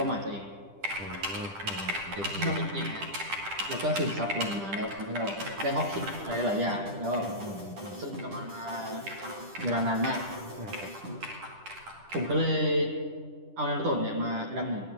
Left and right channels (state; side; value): late; left; 10 ms